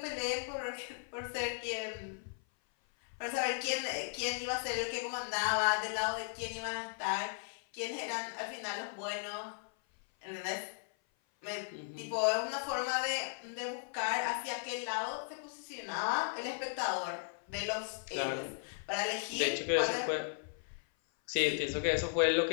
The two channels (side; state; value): right; silent; 53 dB below the other